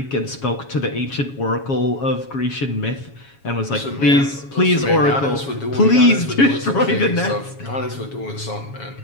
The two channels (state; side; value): late; right; 7.3 ms